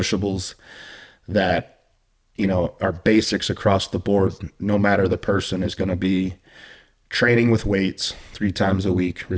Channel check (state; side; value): identical; both; correlation 1.00